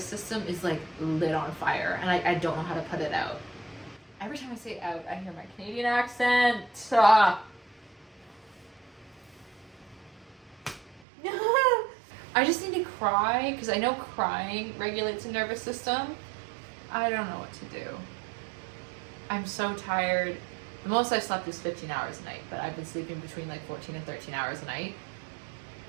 system is like lit on fire, and I don't know how to put it out. Every time I say out, I hear my Canadian accent. I just need to cry, because I know crying regulates the nervous system. I don't know what to do. I'm so tired. The most I've slept is 15 hours a night, but I've been sleeping between like 14 and 13 hours a night,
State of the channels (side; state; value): left; drops out; at 11.1 s